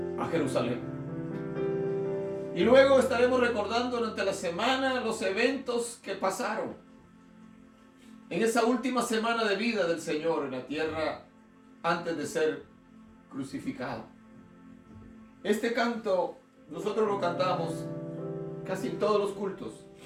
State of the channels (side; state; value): both; identical; correlation 1.00